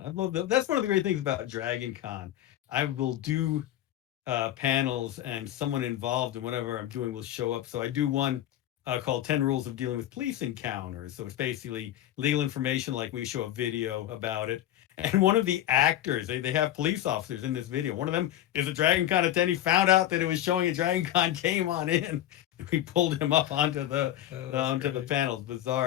love that. That's one of the great things about Dragon Con. I will do panels, and someone involved in whatever I'm doing will show up. So I do one called 10 Rules of Dealing with Police Encounters. So it's basically legal information, like we show a video about it. And one of the actors, they have police officers in this video. One of them is a Dragon Con attendee, found out that it was showing a Dragon Con, came on in. We pulled him up onto the the panels.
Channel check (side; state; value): right; quieter; 12.9 dB